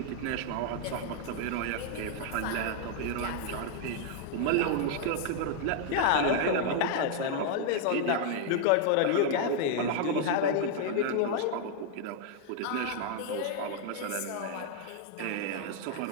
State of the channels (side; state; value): both; different; correlation 0.00